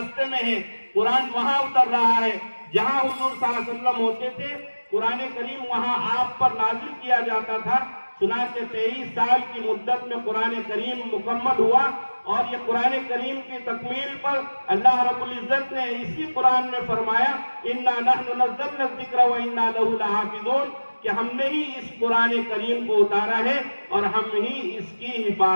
میں ہیں، قرآن وہاں اتر رہا ہے۔ جہاں حضور صلی اللہ علیہ وسلم ہوتے تھے قرآن کریم وہاں آپ پر نازل کیا جاتا تھا۔ چنانچہ 23 سال کی مدت میں قرآن کریم مکمل ہوا، اور یہ قرآن کریم کی تکمیل پر اللہ رب العزت نے اسی قرآن میں فرمایا اِنَّا نَحْنُ نَزَّلْنَا الذِّكْرَ وَإِنَّا لَهُ لَحَافِظُونَ، کہ ہم نے ہی اس قرآن کریم کو اتارا ہے اور ہم ہی اس کی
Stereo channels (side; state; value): both; inverted; correlation -1.00